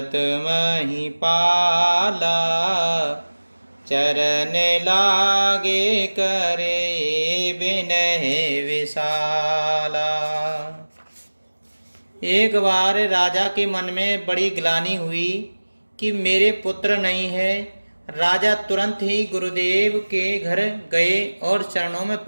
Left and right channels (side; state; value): both; inverted; correlation -1.00